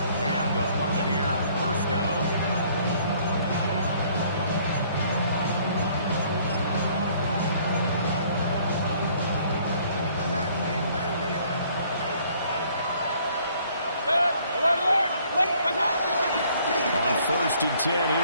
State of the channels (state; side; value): inverted; both; correlation -0.60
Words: And the Buccaneer first down. On first and 10,